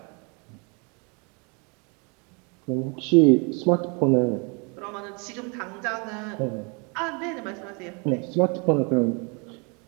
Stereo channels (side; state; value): left; quieter; 33.0 dB